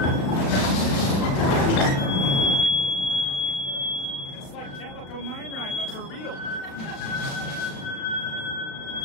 It's like Calico Mine Ride, but for real.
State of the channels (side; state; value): right; late; 36 ms